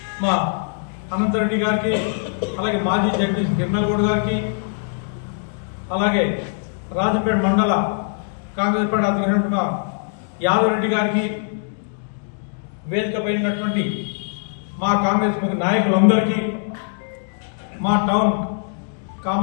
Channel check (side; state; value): right; silent; 63 dB below the other